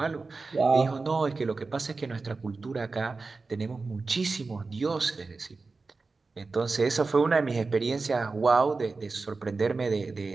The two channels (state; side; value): quieter; left; 4.0 dB